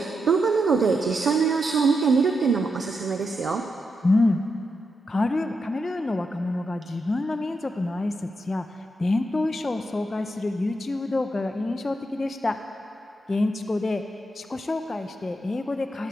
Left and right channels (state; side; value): normal; both; correlation 0.84